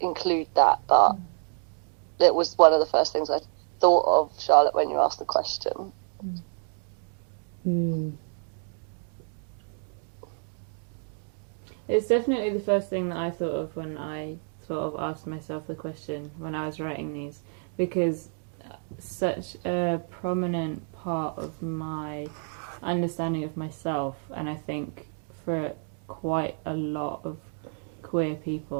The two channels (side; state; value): left; silent; 56 dB below the other